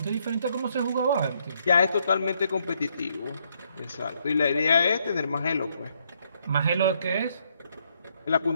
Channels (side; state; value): both; inverted; correlation -0.73